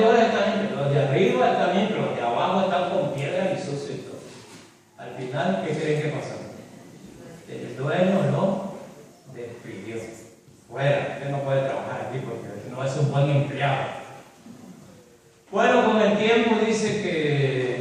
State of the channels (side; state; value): both; identical; correlation 1.00